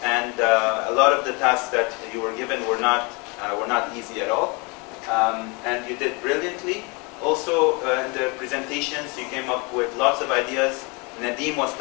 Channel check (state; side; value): quieter; right; 30.0 dB